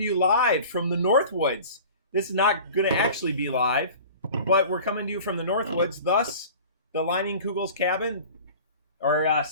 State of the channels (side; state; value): both; inverted; correlation -0.41